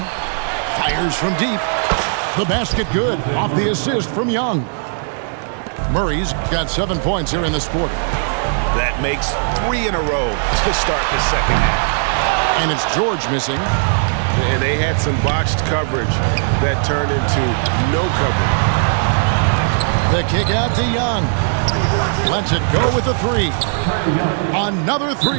Fires from deep. The basket good off the assist from Young. Murray's got 7 points here in this quarter. That makes 3 in a row to start the second half. And it's George missing. And they had some botched coverage that turned into no coverage. The kick out to Young. Lets it go with a 3. Another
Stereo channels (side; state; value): left; silent; 66 dB below the other